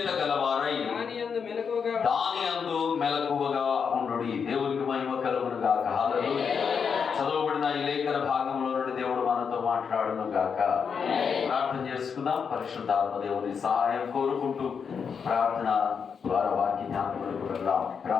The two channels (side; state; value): right; quieter; 6.4 dB